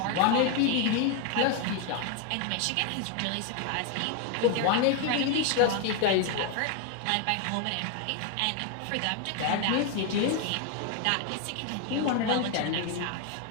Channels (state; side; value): different; both; correlation 0.01